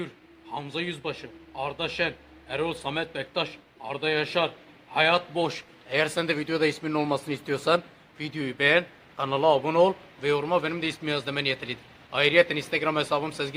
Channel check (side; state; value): both; identical; correlation 1.00